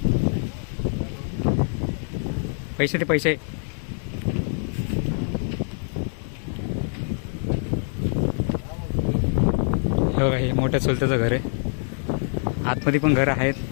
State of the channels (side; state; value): right; silent; 62 dB below the other